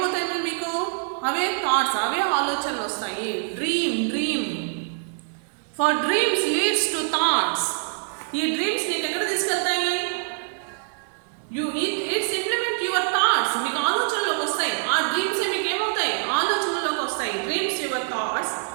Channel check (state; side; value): silent; left; digital silence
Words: మీకు? అవే థాట్స్, అవే ఆలోచనలు వస్తాయి. Dream for dreams leads to thoughts. ఈ డ్రీమ్స్ నీకు ఎక్కడ తీసుకెళ్తాయి? It's implement your thoughts. మీకు ఆలోచనలోకి వస్తాయి. ఆ డ్రీమ్స్ మీకు ఏమవుతాయి? ఆలోచనలోకి వస్తాయి. Dreams your thoughts